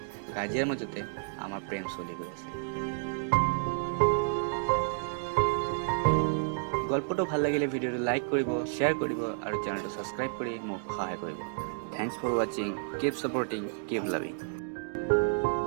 কাজিয়াৰ মাজতে আমাৰ প্ৰেম চলি গৈ আছে। গল্পটো ভাল লাগিলে ভিডিঅ'টো লাইক কৰিব, শ্বেয়াৰ কৰিব আৰু চেনেলটো ছাবস্ক্ৰাইব কৰি মোক সহায় কৰিব। থেংকছ ফৰ ৱাচিং, কিপ ছাপৰ্টিং, কিপ লাভিং।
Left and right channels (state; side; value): silent; left; digital silence